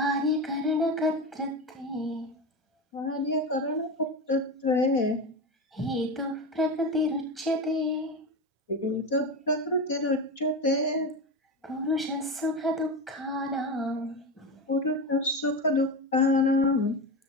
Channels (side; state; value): both; normal; correlation 0.20